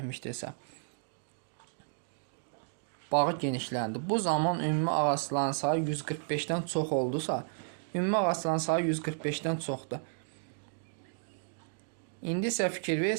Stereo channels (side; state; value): left; silent; digital silence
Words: bağı genişləndi. Bu zaman ümumi ağacların sayı 145-dən çox oldusa, ümumi ağacların sayı 145-dən çoxdur. İndi isə fikir